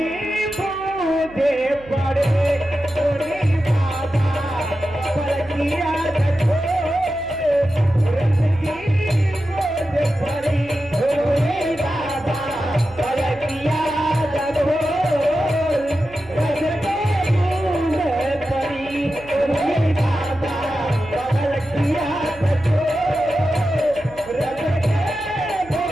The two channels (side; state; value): right; noise; hum, 21 dB below the sound